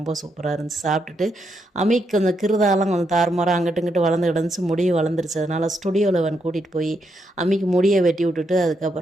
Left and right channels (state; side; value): normal; both; correlation 0.80